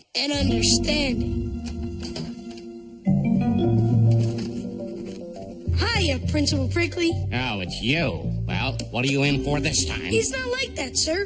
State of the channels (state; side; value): identical; both; correlation 1.00